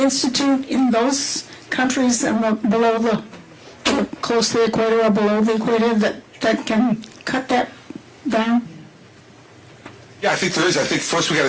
in those countries and below the close to the equator or below the equator that can cut that down? Yeah, I think there is. I think first we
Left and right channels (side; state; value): both; identical; correlation 1.00